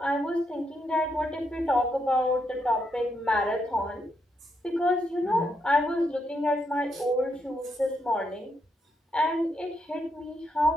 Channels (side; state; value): both; normal; correlation 0.80